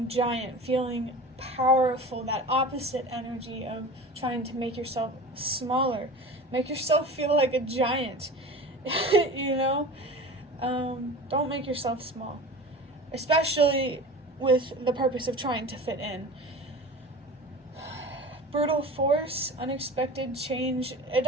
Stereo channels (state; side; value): normal; both; correlation 0.35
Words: giant, feeling powerful, that opposite energy of trying to make yourself smaller, make yourself feel like a giant, don't make yourself small. Especially with the purpose of trying to fit in. Brutal force, unexpected change. It